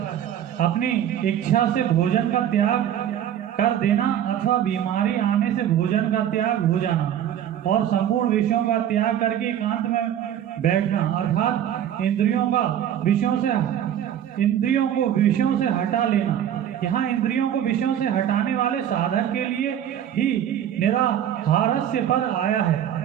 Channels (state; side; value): quieter; left; 10.3 dB